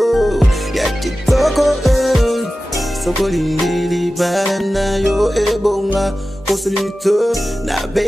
ya kitoko, soko lindili balanda yo ebonga. Kosulito na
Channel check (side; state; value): both; normal; correlation 0.95